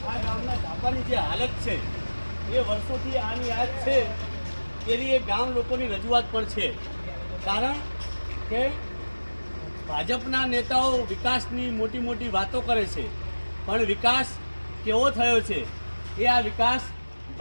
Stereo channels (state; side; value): inverted; both; correlation -1.00